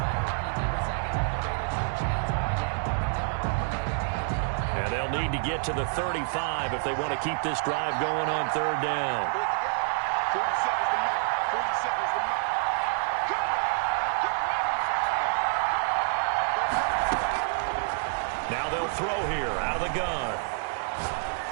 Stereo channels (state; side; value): silent; left; digital silence